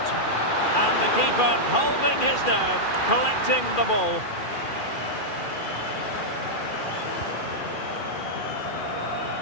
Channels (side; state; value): right; late; 2.4 ms